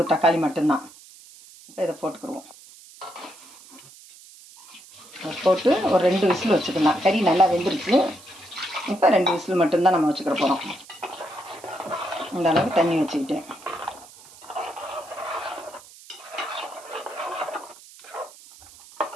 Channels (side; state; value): right; noise; hiss, 21 dB below the sound